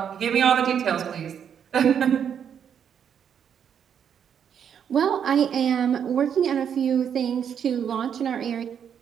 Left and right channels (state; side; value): quieter; left; 8.2 dB